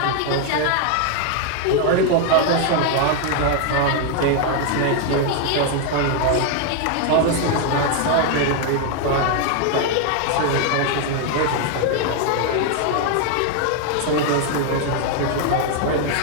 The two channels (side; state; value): both; different; correlation 0.00